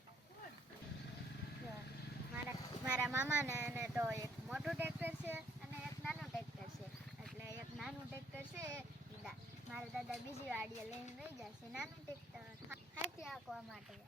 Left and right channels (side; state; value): both; normal; correlation 0.66